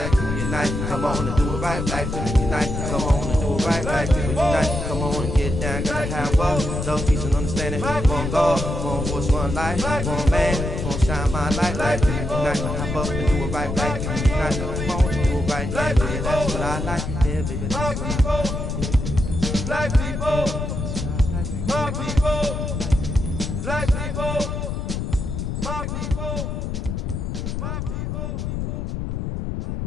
people unite. Come on and do it right. Black people unite. Come on and do it right. Black people unite. Come on and get down. Gotta have love, love, peace, and understanding. One God, one voice, one life. One man, one shine my light. Black people unite. Hop up and do it right. Black people unite. Come on and do it right. Yeah, baby, that's what I like. Yeah, baby, that's what I like. Black people, my people, black people, my people, my people.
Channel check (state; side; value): noise; left; rumble, 3 dB below the sound